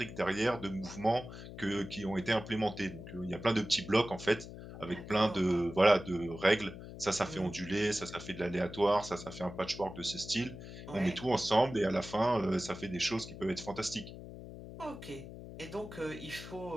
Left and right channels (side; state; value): left; noise; hum, 12 dB below the sound